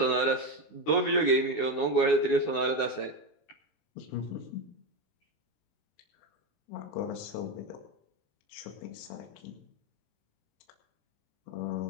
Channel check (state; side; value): late; right; 19 ms